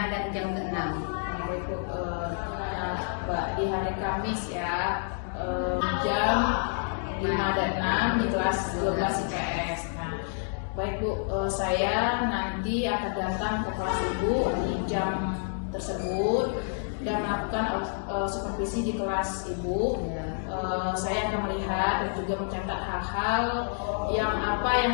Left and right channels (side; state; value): right; silent; digital silence